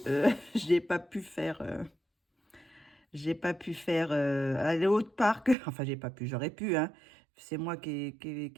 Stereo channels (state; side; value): drops out; left; at 5.6 s